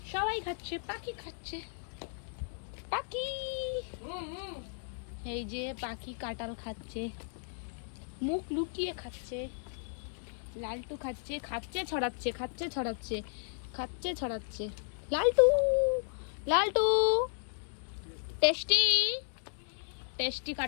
সবাই খাচ্ছে, পাখি খাচ্ছে। পাখি, এই যে পাখি কাঁঠাল খাচ্ছে, মুখ লুকিয়ে খাচ্ছে। লালটু খাচ্ছে, খাচ্ছে ছড়াচ্ছে, খাচ্ছে ছড়াচ্ছে, খাচ্ছে ছড়াচ্ছে। লালটু লালটু টেস্টি টেস্টি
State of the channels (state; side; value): silent; right; digital silence